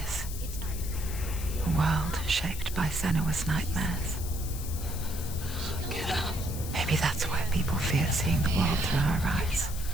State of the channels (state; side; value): noise; left; hiss, 11 dB below the sound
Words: is? A world shaped by Senua's nightmares. Maybe that's why people fear seeing the world through her eyes.